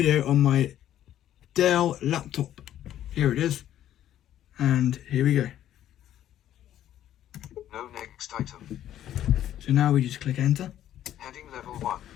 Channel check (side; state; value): right; quieter; 11.7 dB